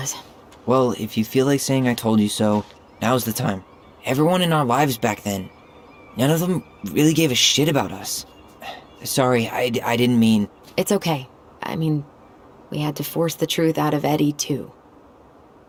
Well, if you feel like saying I told you so, now's the time. Everyone in our lives back then, none of them really gave a shit about us. Sorry, I didn't mean... It's okay. I mean, we had to force the truth out of Eddie, too.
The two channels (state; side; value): identical; both; correlation 1.00